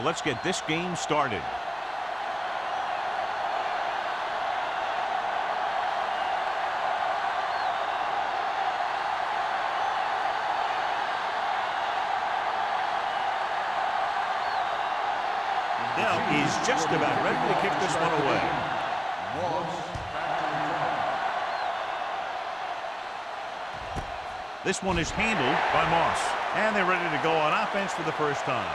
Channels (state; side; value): identical; both; correlation 1.00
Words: get this game started. Is just about ready to kick this one away. This one is handled by Moss. And they're ready to go on offense for the first